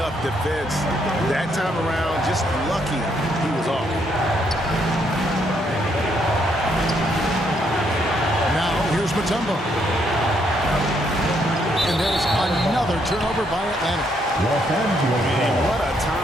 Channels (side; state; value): both; normal; correlation 0.73